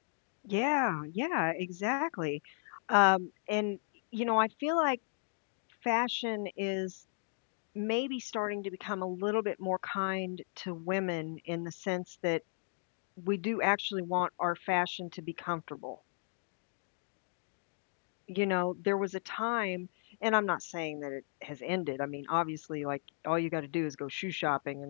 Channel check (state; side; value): silent; right; digital silence